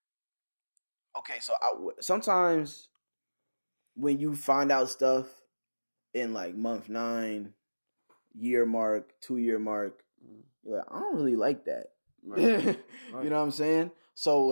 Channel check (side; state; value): both; inverted; correlation -1.00